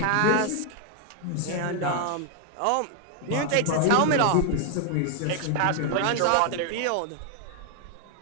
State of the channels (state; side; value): different; both; correlation 0.00